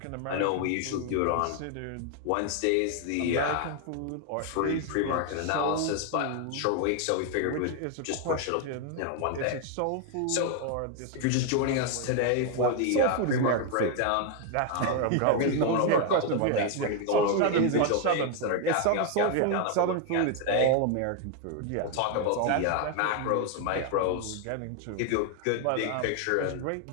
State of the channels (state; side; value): different; both; correlation 0.01